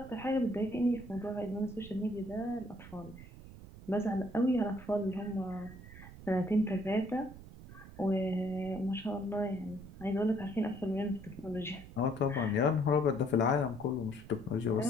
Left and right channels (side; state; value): right; noise; rumble, 16 dB below the sound